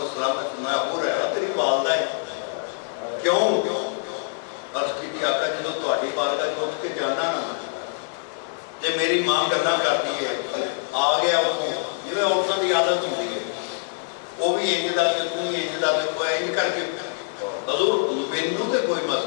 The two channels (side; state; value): right; silent; 62 dB below the other